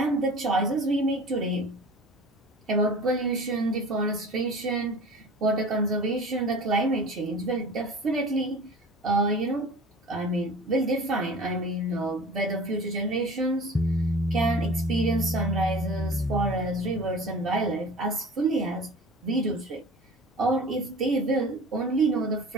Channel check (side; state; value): both; normal; correlation 0.40